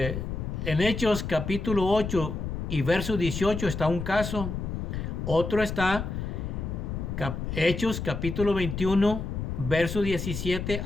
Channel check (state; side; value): noise; left; rumble, 4 dB below the sound